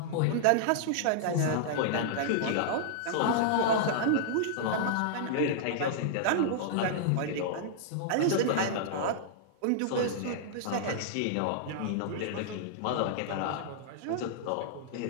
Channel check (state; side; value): different; both; correlation -0.01